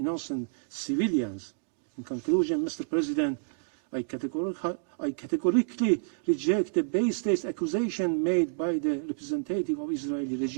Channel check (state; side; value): silent; left; digital silence